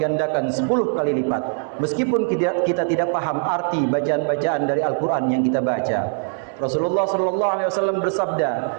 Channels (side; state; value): left; silent; 65 dB below the other